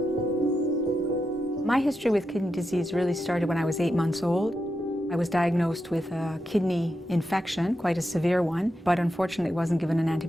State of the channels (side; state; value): both; normal; correlation 0.87